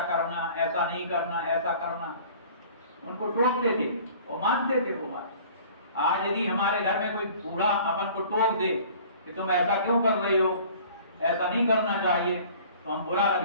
करना, ऐसा नहीं करना, ऐसा करना, उनको टोकते थे और मानते थे वो बात। आज यदि हमारे घर में कोई बूढ़ा अपन को टोक दे कि तुम ऐसा क्यों कर रही हो, ऐसा नहीं करना चाहिए, तो हम बुरा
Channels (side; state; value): both; inverted; correlation -0.48